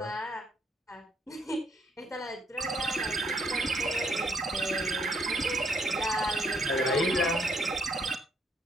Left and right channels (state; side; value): normal; both; correlation 0.70